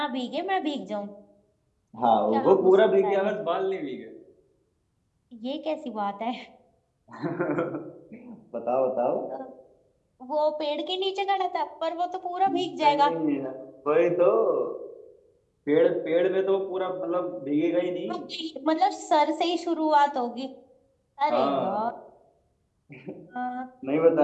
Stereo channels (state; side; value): identical; both; correlation 1.00